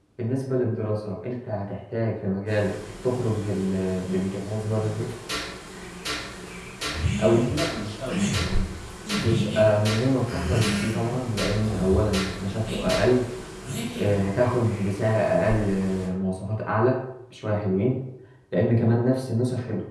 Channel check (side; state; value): both; identical; correlation 1.00